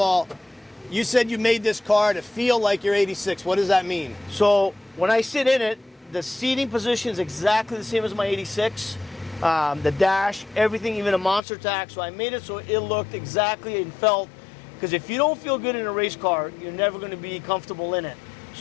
you said you made this car to feel like you're 86. What does that mean? So when I sit in it, the seating position is exactly the same as my 86. The dash, everything, even a monster tack. So I made it so it looked exactly and felt, because if you don't feel good in a race car, you're never going to be comfortable in it.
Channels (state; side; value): drops out; right; at 11.4 s